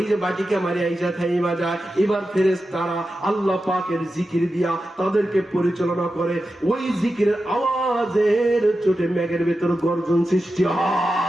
যে বাটিকে মারি আইসা থাইমা যায়, এবার ফেরেশতারা আল্লাহ পাকের জিকির দিয়া তাদেরকে পরিচালনা করে। ওই জিকিরের আওয়াজে চোটে মেঘের ভেতর গর্জন সৃষ্টি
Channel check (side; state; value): both; normal; correlation 0.91